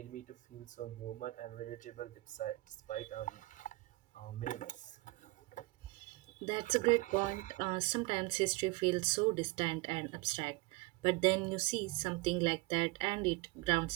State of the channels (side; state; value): left; quieter; 22.4 dB